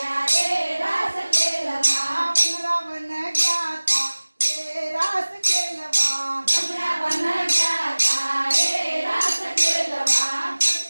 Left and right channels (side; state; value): both; inverted; correlation -1.00